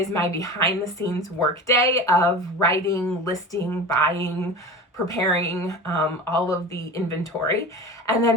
my behind the scenes work day of writing, listing, buying, preparing all of the inventory. And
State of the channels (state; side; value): normal; both; correlation 0.33